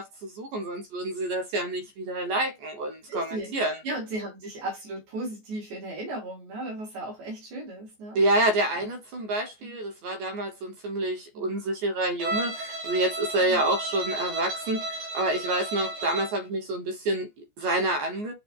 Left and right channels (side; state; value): left; late; 14 ms